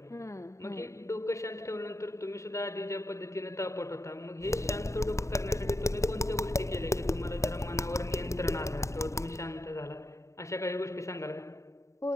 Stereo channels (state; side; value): late; right; 0.14 ms